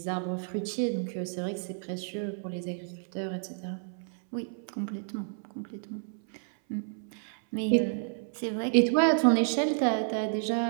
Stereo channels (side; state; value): left; silent; 58 dB below the other